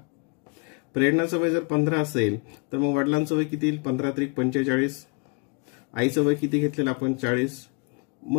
प्रेरणाचं वय जर 15 असेल तर मग वडिलांचं वय किती येईल, 15 × 45. आईचं वय किती घेतलेलं आपण, 40.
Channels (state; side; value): quieter; right; 33.4 dB